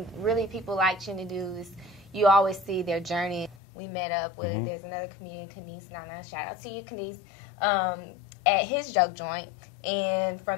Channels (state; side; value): drops out; right; at 3.6 s